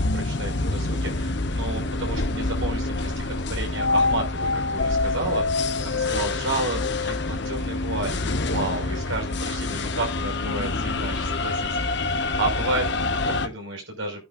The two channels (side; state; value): both; normal; correlation 0.02